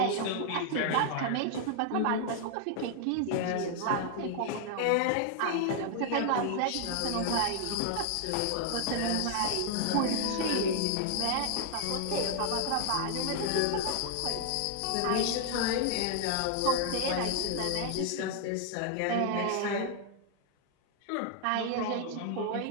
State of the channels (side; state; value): both; different; correlation 0.00